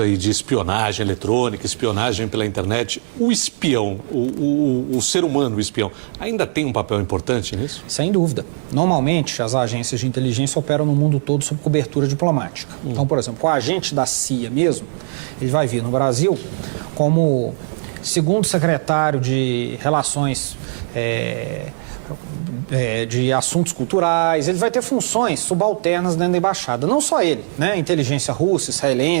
de espionagem eletrônica, espionagem pela internet, o espião, o ser humano, o espião, ainda tem um papel importante nisso? Sem dúvida. Normalmente, as agências de inteligência operam no mundo todo sob cobertura diplomática. Então, por exemplo, o agente da CIA mesmo, ele vai vir no Brasil como segundo secretário de Relações de Assuntos Culturais, ele vai ter funções subalternas dentro da embaixada. Não só ele, né? Inteligência russa,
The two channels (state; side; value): silent; left; digital silence